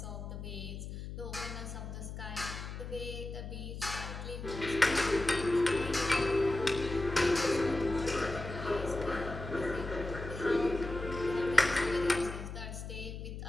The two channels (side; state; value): left; noise; hum, 8 dB below the sound